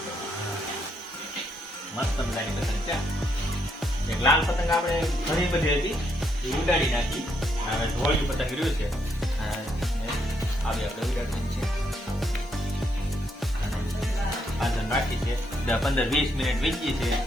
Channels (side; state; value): both; normal; correlation 0.75